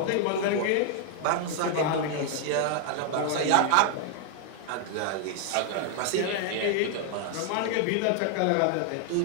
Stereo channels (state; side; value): different; both; correlation 0.00